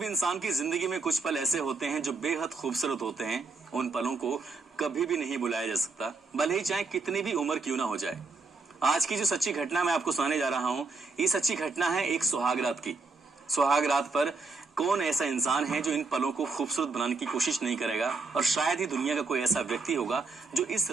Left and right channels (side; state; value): left; quieter; 3.9 dB